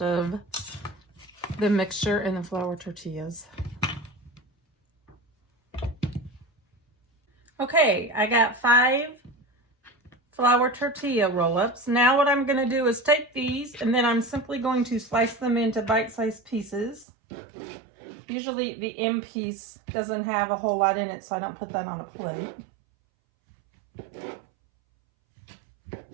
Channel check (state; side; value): drops out; left; at 17.1 s